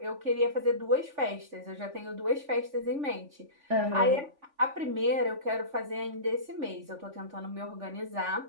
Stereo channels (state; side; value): late; left; 3.5 ms